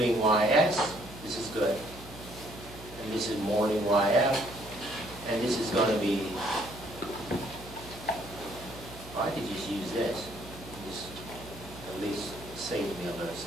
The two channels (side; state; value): right; noise; hum, 17 dB below the sound